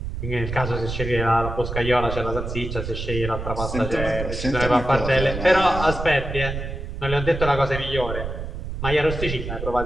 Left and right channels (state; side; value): noise; right; rumble, 6 dB below the sound